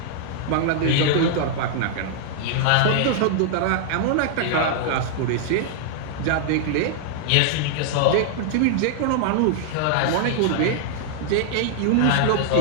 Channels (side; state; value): both; different; correlation -0.01